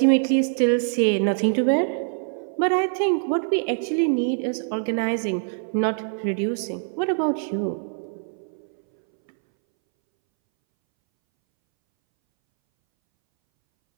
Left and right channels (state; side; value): silent; left; 63 dB below the other